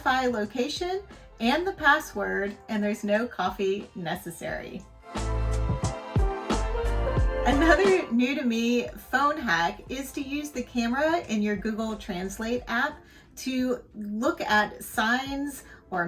location and the password, and there's no coffee necessary. Another new to me phone hack is to use the camera in your Google Translate app to look at signs or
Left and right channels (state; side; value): identical; both; correlation 1.00